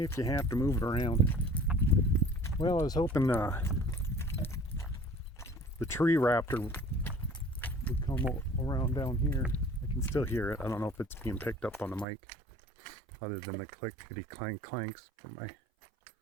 Well, I was hoping the tree raptor would come around down here. I can still hear it. I don't know if it's being picked up on the mic other than the clickety clank clanks from my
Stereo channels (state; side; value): drops out; left; at 12.1 s